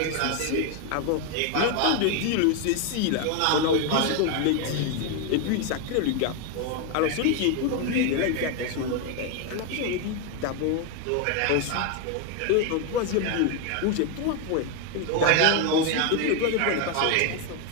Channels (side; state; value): both; different; correlation 0.01